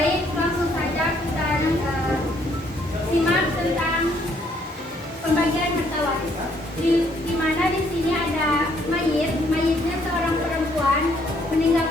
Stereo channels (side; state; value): both; normal; correlation 0.67